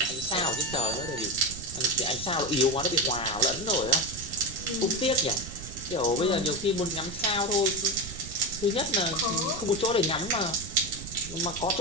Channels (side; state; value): right; noise; rumble, 12 dB below the sound